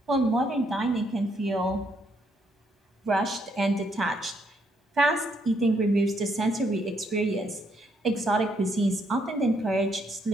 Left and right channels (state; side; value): normal; both; correlation 0.73